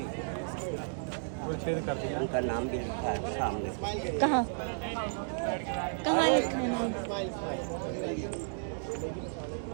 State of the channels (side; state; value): left; silent; digital silence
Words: वो छेद कर दिया। उनका नाम भी लिखा है सामने। कहाँ कहाँ लिखा है नाम?